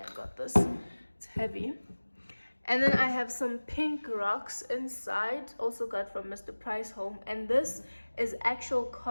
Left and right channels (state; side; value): inverted; both; correlation -1.00